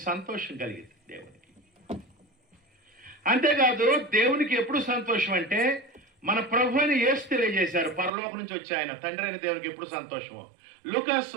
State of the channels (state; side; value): drops out; left; at 8.1 s